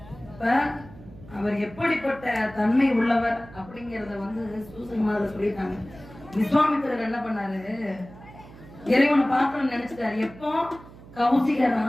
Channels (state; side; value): noise; right; hum, 19 dB below the sound